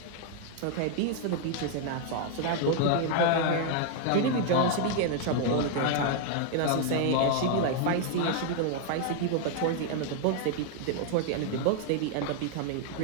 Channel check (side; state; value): both; different; correlation 0.00